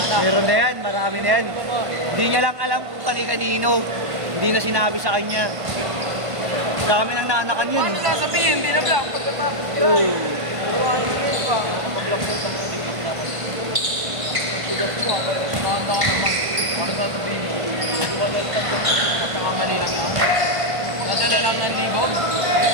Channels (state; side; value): late; left; 1.5 ms